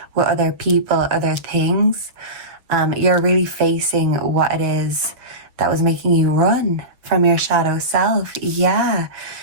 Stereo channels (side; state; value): left; late; 6.8 ms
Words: with other people, other things, you're really facing what it is that was making you run from your shadow self. Yeah.